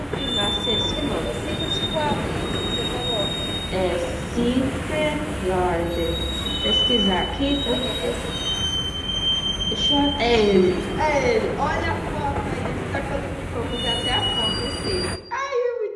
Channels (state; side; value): identical; both; correlation 1.00